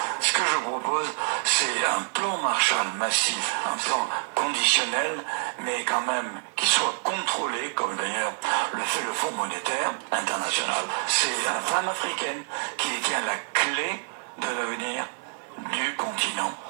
Ce que je propose, c'est un plan Marshall massif, un plan conditionnel, mais quand même qui soit contrôlé, comme d'ailleurs le fait le Fonds monétaire international. C'est la femme africaine qui détient la clé de l'avenir du continent.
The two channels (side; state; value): left; silent; digital silence